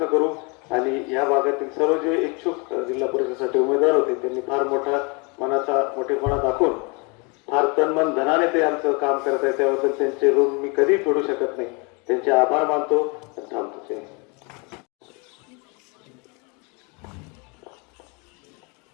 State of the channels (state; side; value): quieter; right; 31.2 dB